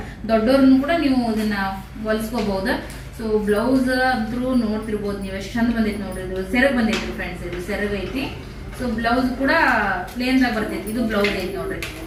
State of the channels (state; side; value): identical; both; correlation 1.00